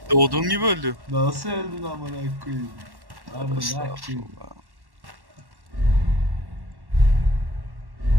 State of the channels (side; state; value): left; late; 1.1 ms